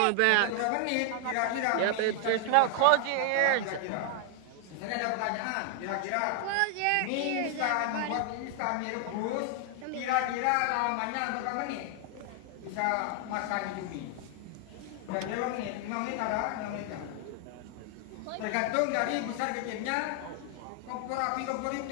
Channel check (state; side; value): different; both; correlation 0.00